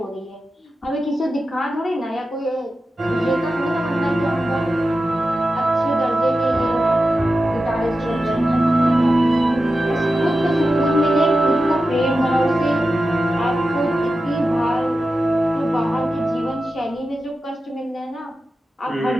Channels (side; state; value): both; normal; correlation 0.92